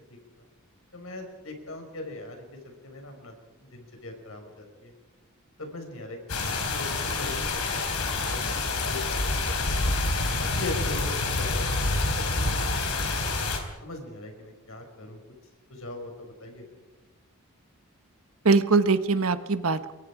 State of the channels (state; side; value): normal; both; correlation 0.31